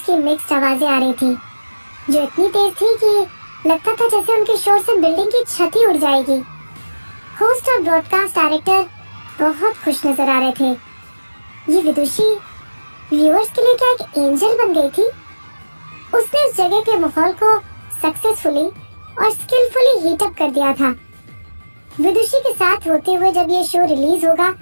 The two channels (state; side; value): inverted; both; correlation -1.00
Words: की मिक्स्ड आवाजें आ रही थी जो इतनी तेज थी कि लगता था जैसे उनके शोर से बिल्डिंग की छत ही उड़ जाएगी। होस्ट और ब्रॉडकास्ट डायरेक्टर बहुत खुश नजर आ रहे थे। ये विदुषी व्यूअर्स के लिए क्या एक एंजल बन गई थी? उसने उस जगह के माहौल को सक्सेसफुली और स्किलफुली हीट अप कर दिया था। विदुषी के साथ होते हुए जब ये शो रिलीज होगा